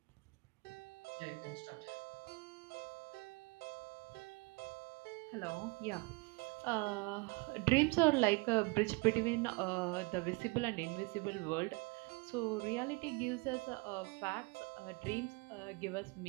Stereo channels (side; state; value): left; quieter; 27.8 dB